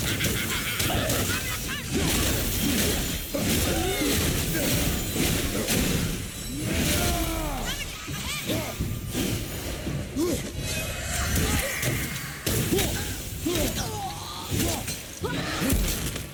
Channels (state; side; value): identical; both; correlation 1.00